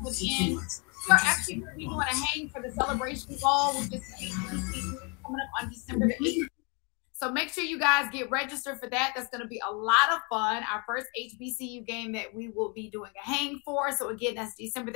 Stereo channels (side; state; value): right; quieter; 32.9 dB